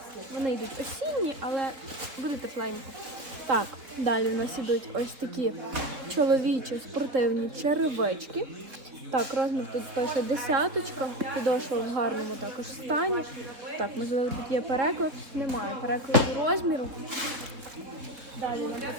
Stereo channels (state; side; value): late; left; 3.7 ms